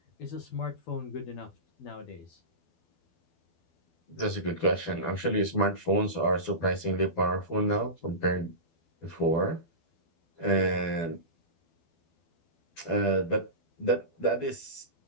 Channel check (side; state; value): right; late; 12 ms